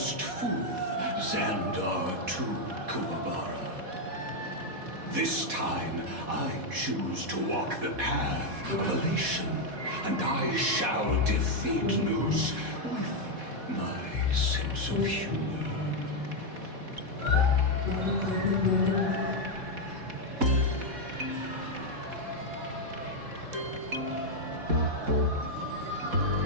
fool, Xandar II Kuwabara. This time, I choose to walk the path of elation, and I shall defeat Noose with my sense of humor.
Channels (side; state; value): left; late; 4.1 ms